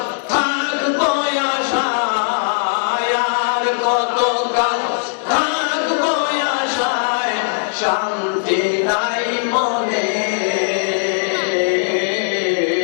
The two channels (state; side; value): silent; right; digital silence